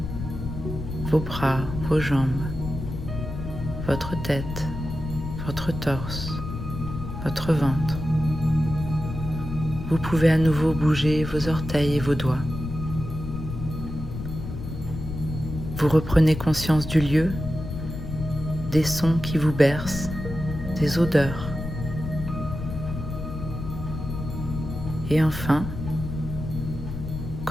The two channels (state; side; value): noise; left; rumble, 7 dB below the sound